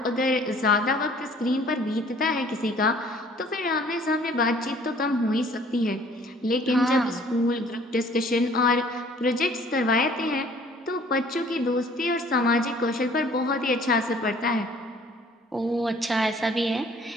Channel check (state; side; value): normal; both; correlation 0.55